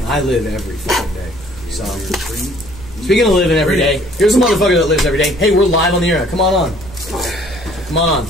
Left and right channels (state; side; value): noise; right; rumble, 17 dB below the sound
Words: I live every fucking day. So, speaking of living every day, here's a motherfucker that lives every day. Hey, we're live on the air. Come on. Come on.